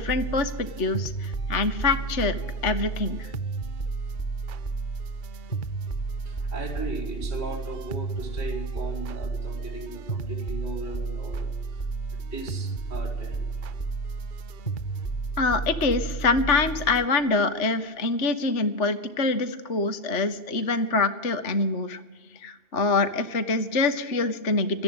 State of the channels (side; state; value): right; late; 2.7 ms